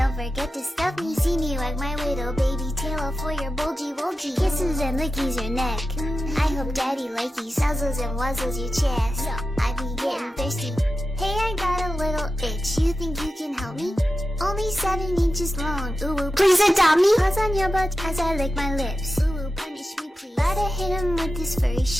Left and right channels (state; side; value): normal; both; correlation 0.93